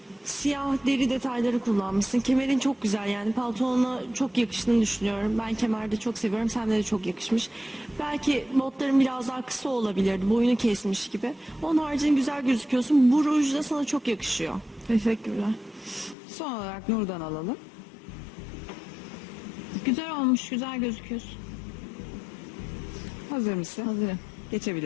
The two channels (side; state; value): right; drops out; at 16.2 s